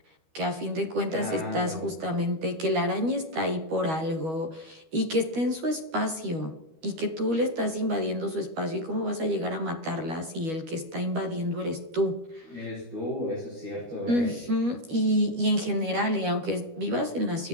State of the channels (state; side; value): late; left; 13 ms